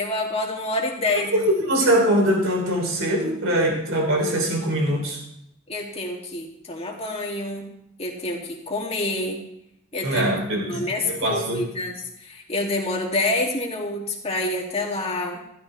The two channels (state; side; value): normal; both; correlation 0.12